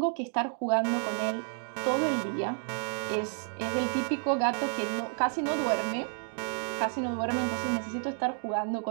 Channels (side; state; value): left; silent; 57 dB below the other